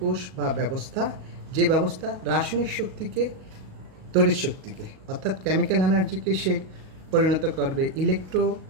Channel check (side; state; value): left; late; 37 ms